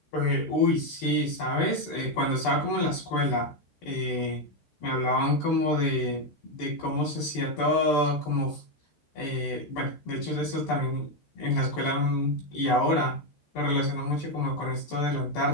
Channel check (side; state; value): right; late; 13 ms